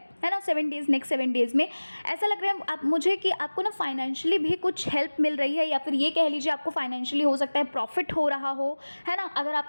ना, 7 डेज़, नेक्स्ट 7 डेज़ में ऐसा लग रहा है आप मुझे कि आपको ना फाइनेंशियली भी कुछ हेल्प मिल रही है, या फिर ये कह लीजिए आपको फाइनेंशियली हो सकता है प्रॉफिट हो रहा हो, है ना? अगर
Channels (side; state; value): both; inverted; correlation -1.00